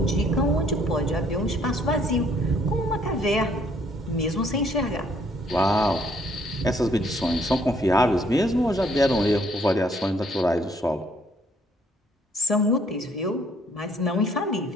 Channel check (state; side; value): normal; both; correlation 0.64